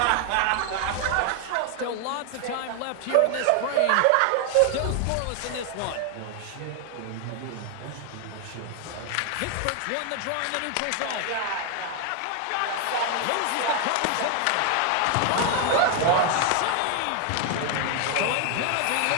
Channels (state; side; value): different; both; correlation 0.00